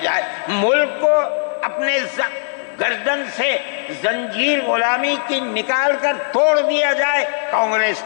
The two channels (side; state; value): right; silent; digital silence